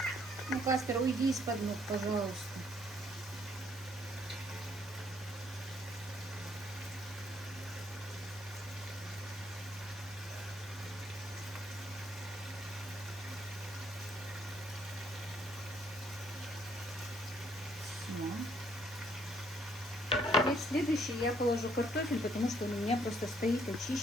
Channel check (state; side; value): normal; both; correlation 0.67